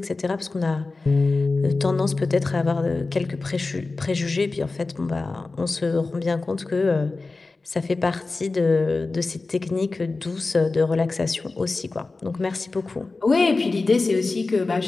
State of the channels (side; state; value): right; quieter; 3.6 dB